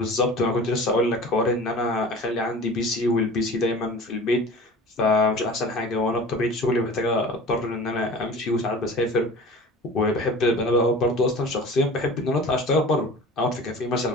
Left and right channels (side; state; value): both; normal; correlation 0.40